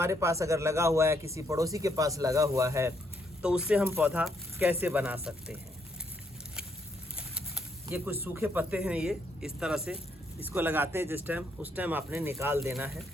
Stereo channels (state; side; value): normal; both; correlation 0.73